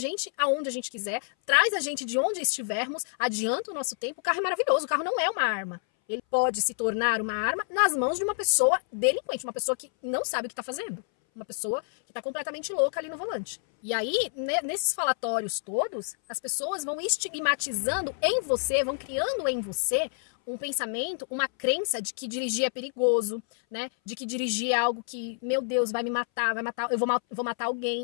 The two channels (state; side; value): silent; right; 59 dB below the other